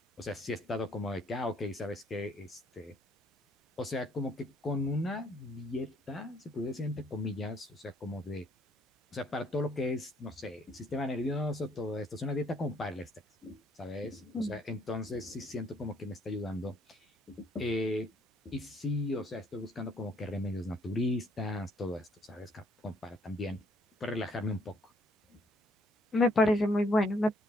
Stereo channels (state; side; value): normal; both; correlation 0.66